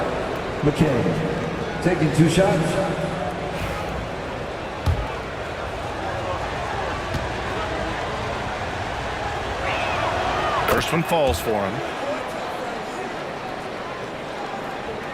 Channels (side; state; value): both; identical; correlation 1.00